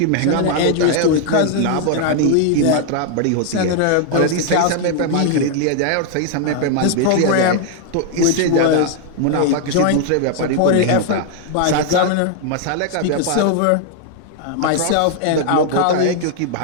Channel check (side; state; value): both; different; correlation 0.00